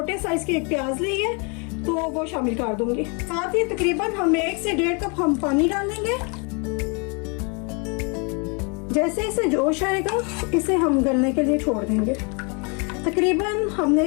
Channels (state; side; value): quieter; right; 33.6 dB